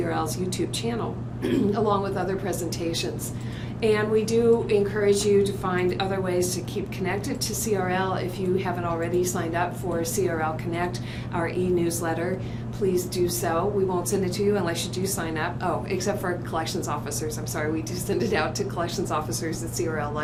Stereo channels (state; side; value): identical; both; correlation 1.00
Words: YouTube channel, along with other presentations. And we do encourage you to find other ways to keep connected to CRL. If you haven't already signed up for CRL Connect, our e-newsletter, please do so. We won't send it to you unless you do sign up. Oh, except for collections officers. I'm sorry, we do send it out to collections officers at CRL